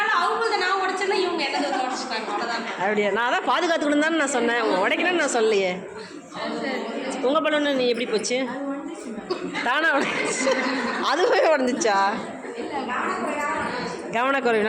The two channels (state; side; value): identical; both; correlation 1.00